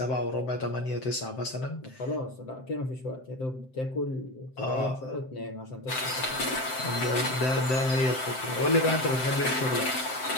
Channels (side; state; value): right; late; 7.7 ms